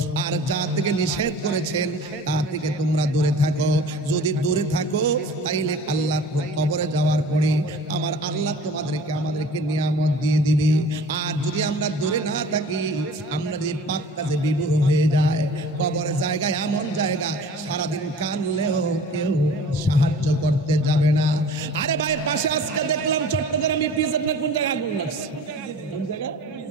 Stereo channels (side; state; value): both; normal; correlation 0.44